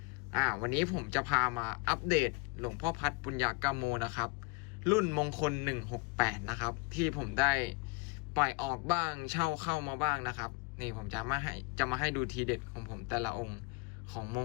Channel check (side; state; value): right; quieter; 27.9 dB